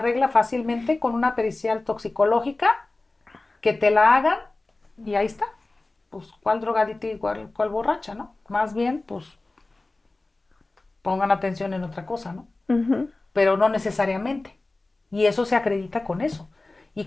fácilmente con una pericial toxicológica que te la hagan y ahí está. Pues, ¿cuál drogadita y cuál borracha, no? Más bien, pues, pongan atención en otra cosa, ¿no? Ujú. Pero no necesariamente. Y eso se acredita con eso. Y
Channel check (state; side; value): quieter; right; 3.1 dB